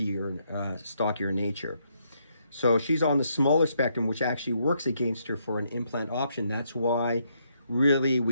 nature. So she's on the smaller spectrum, which actually works against her for an implant option. That's why really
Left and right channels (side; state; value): both; inverted; correlation -0.75